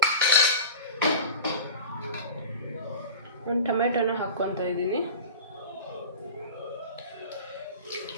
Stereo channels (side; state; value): both; inverted; correlation -0.33